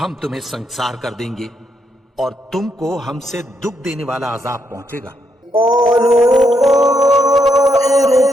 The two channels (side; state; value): both; normal; correlation 0.78